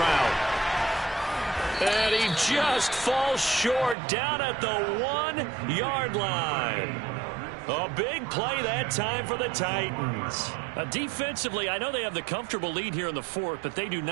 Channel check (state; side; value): drops out; left; at 4.0 s